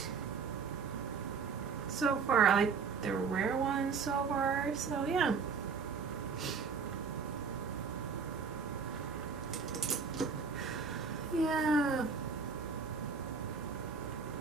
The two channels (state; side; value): quieter; left; 5.4 dB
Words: so far. I like the rare one so far, so yeah. Yeah.